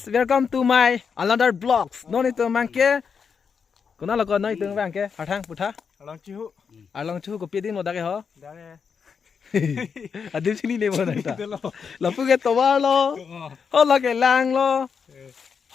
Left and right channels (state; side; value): quieter; right; 6.2 dB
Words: welcome to my another vlogs. No itu mangke. Kuna lo no itu mangke. Harthang putha. Along chu ko pidin mo dake ho. Adim sini le mo na ta. Lo pu ke towar lo. Ho la ke lang lo.